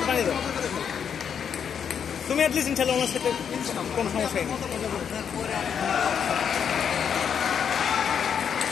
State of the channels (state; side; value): quieter; right; 7.6 dB